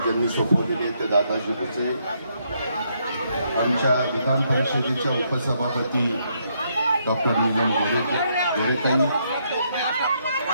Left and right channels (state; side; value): inverted; both; correlation -0.75